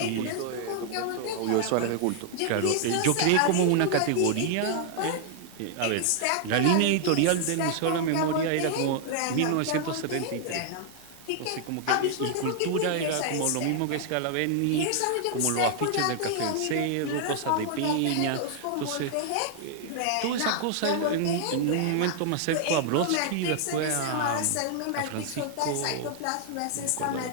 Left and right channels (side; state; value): both; different; correlation 0.00